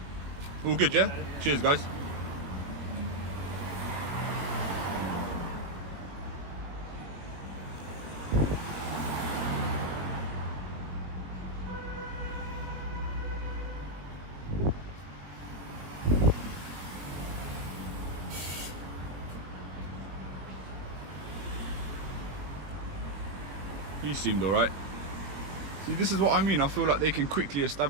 All good, yeah? Cheers, guys. He seemed alright. See, this is what I mean. I feel like they can quickly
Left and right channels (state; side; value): late; left; 20 ms